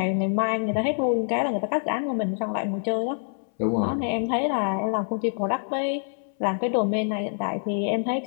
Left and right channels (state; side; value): silent; right; 60 dB below the other